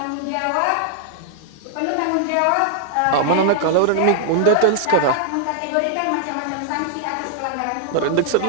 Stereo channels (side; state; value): both; different; correlation -0.01